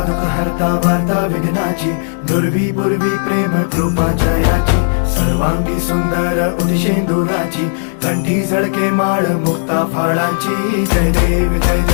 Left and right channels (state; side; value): silent; right; digital silence